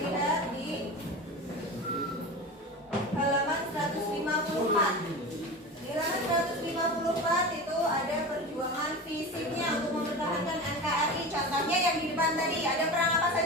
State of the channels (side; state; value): both; normal; correlation 0.29